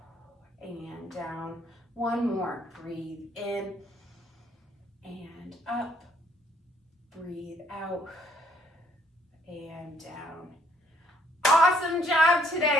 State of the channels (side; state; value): both; normal; correlation 0.66